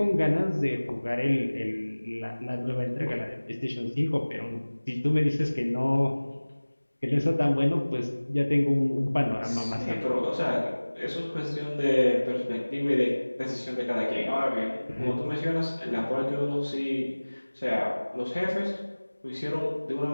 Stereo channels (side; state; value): both; inverted; correlation -1.00